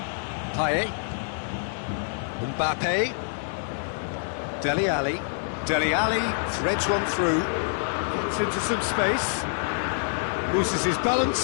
Payet. Mbappe. Dele Alli. Dele Alli threads one through. Gets into some space. Loses his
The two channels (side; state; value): right; silent; digital silence